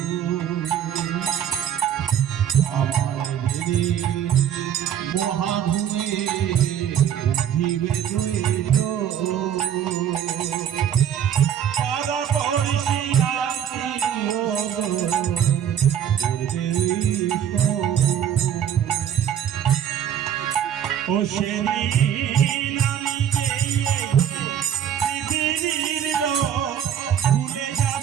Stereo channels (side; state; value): left; quieter; 9.3 dB